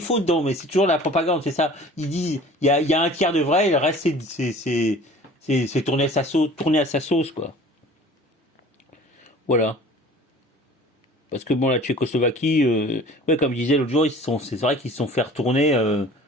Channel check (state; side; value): normal; both; correlation 0.46